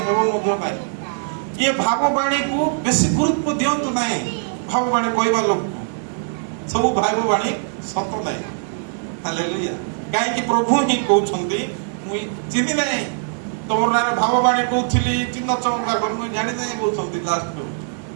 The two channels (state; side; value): silent; left; 65 dB below the other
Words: ହେବ ମଧ୍ୟ ନାହିଁ। ଇଏ ଭାବବାଣୀକୁ ବେଶୀ ଗୁରୁତ୍ୱ ଦିଅନ୍ତୁ ନାହିଁ। ଭାବବାଣୀ କହିବା ଲୋକକୁ ସବୁ ଭାବବାଣୀ ସତ ନାହିଁ। ହାଲେଲୁୟା। କାହିଁକି? ପ୍ରଭୁ ହିଁ କହୁଛନ୍ତି, ମୁଁ ଚିହ୍ନି ନାହିଁ, ତମର ନାଁରେ ଭାବବାଣୀ କହୁଥିଲି, ଚିହ୍ନ ଚମତ୍କାର ମୁଁ ଜାଣି ନାହିଁ କହୁଛନ୍ତି ଲାଷ୍ଟକୁ।